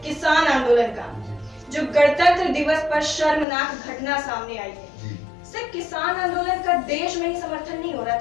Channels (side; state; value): right; drops out; at 3.5 s